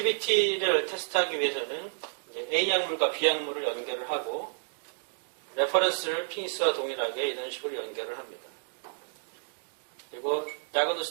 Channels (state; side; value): silent; left; digital silence